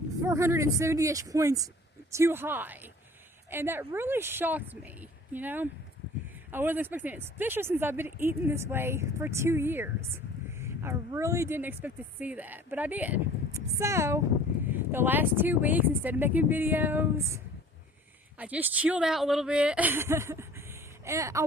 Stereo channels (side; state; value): both; normal; correlation 0.48